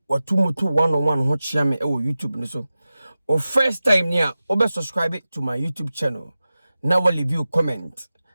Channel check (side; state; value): both; inverted; correlation -0.95